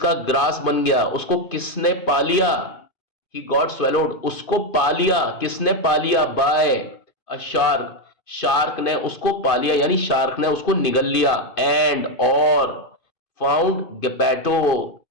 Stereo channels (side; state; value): right; late; 2.5 ms